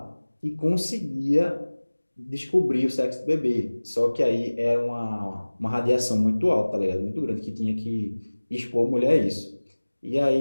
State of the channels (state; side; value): inverted; both; correlation -1.00